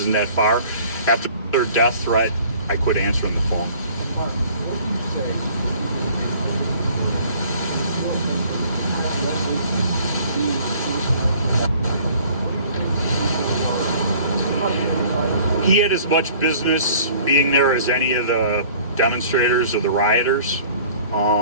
that far. After their death threat, I quit answering the phone. He had as much business being there as any of the demonstrators or the rioters.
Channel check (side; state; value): both; inverted; correlation -0.52